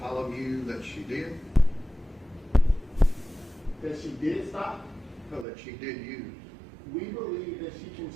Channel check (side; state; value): left; drops out; at 5.5 s